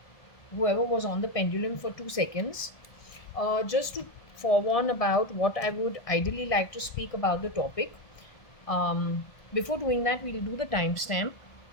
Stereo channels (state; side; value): late; right; 1.5 ms